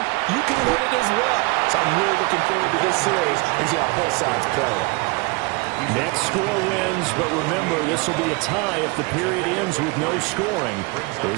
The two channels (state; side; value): quieter; left; 27.2 dB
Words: you can win it as well. So I'm really looking forward to this series and see how both sides play it. Next score wins, but remember, this will be a tie if the period ends with no scoring